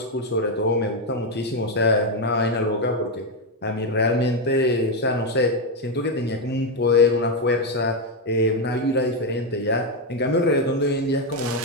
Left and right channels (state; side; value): normal; both; correlation 0.05